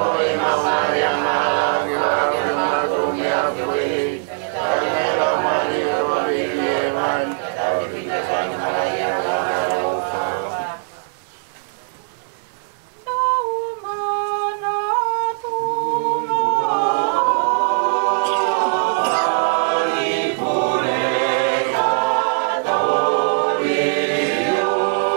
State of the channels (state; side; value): silent; left; digital silence